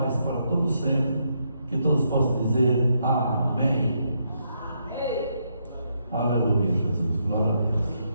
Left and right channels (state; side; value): inverted; both; correlation -0.78